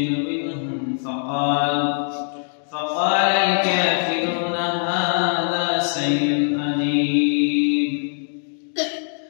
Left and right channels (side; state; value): right; silent; digital silence